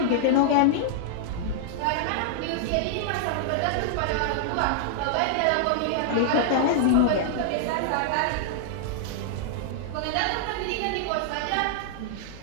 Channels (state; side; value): different; both; correlation -0.01